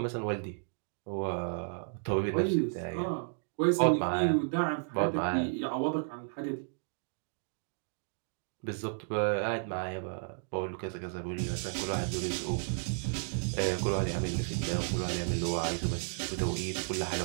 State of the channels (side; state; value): left; silent; digital silence